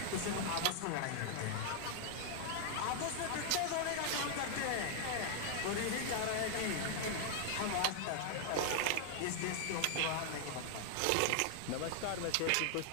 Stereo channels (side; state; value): both; different; correlation 0.00